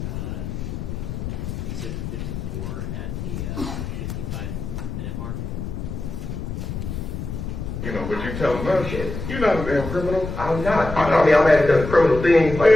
Exhibit 54 at the 55-minute mark. You know, but you tell them no shit. You're not a damn criminal. I'm not. I mean, I may have done criminal things like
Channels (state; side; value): noise; left; rumble, 6 dB below the sound